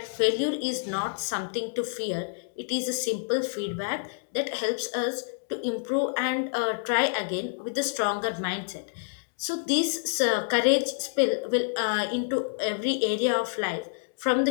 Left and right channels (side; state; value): right; silent; digital silence